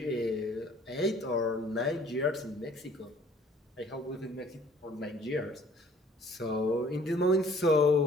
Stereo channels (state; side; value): normal; both; correlation 0.55